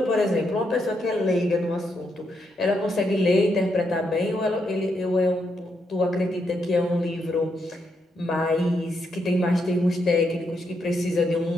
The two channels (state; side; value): normal; both; correlation 0.80